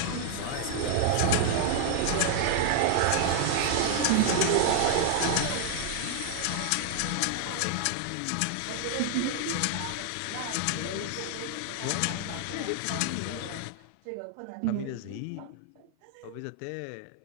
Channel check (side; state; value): both; different; correlation 0.00